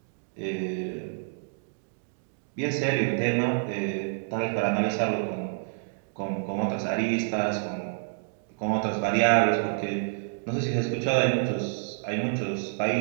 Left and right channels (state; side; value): silent; left; digital silence